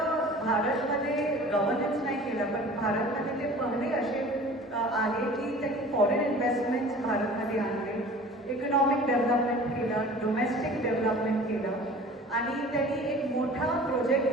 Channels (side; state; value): both; normal; correlation 0.44